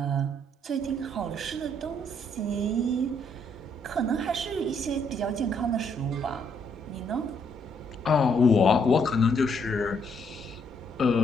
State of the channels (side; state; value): both; normal; correlation 0.71